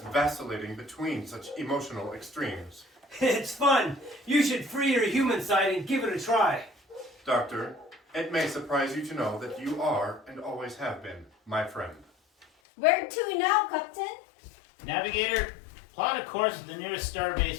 vacillating between such emotional extremes? It's fun. You should free your human side and give it a try. Doctor, it may surprise you to know that you are, and always have been, my friend. Where to now, Captain? Navigator, plot a course to the nearest starbase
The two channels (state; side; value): drops out; right; at 12.5 s